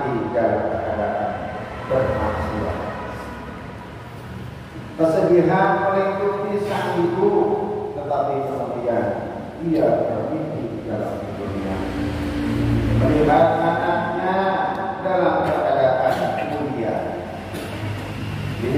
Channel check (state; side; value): identical; both; correlation 1.00